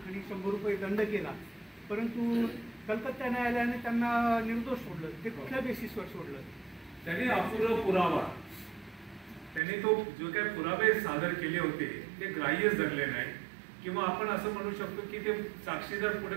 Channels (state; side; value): drops out; left; at 9.6 s